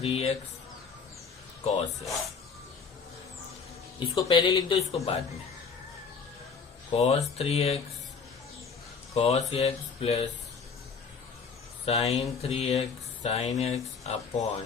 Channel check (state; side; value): quieter; right; 5.4 dB